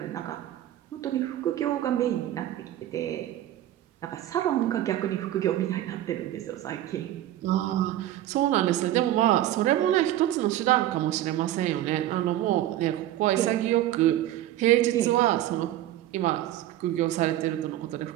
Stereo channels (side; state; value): left; quieter; 13.5 dB